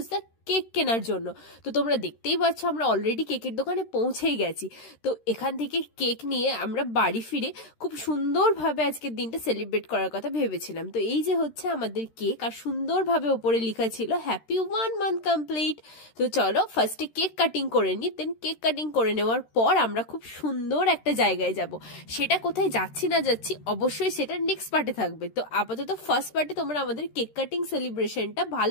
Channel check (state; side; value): late; right; 13 ms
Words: সা কেক কেনার জন্য। তো তোমরা দেখতেই পাচ্ছ আমরা অলরেডি কেকের দোকানে পৌঁছেই গেছি। তো এখান থেকে কেক নিয়ে আমরা বাড়ি ফিরে খুব সুন্দরভাবে আজকের দিনটা সেলিব্রেট করার কথা ভেবেছিলাম। তো এই যে হচ্ছে আমাদের কেক, আর সুন্দরভাবে ওপরে লেখা ছিল হ্যাপি 1 মান্থ কমপ্লিট। তো চলো ফার্স্টে কেক কাটিং করে নিই, দেন কেক কাটিং করে নেওয়ার পর আমরা খুব সুন্দর একটা জায়গায় যাব। সেটা কোথায় যাচ্ছি না যাচ্ছি অবশ্যই সেটা নেক্সট পার্টে থাকবে। তো আপাতত ফার্স্ট পার্টে তোমরা আমাদের কেক কাটিং সেলিব্রেশনটা